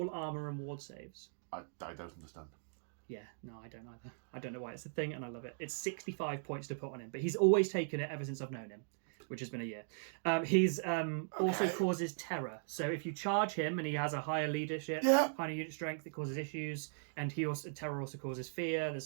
armor and ward saves. I don't understand. Yeah, no, I don't either. I don't know why it's a thing, and I love it. It's 65 points to put on him, but he's always taken it ever since I've known him, which has been a year. He's also causes terror. So if you charge him and he has a higher leadership, higher unit strength, it causes issues, and terror also causes fear. There's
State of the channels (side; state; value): left; silent; digital silence